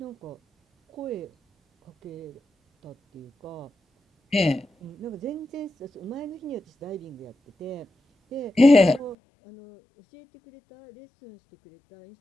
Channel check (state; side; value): drops out; right; at 9.2 s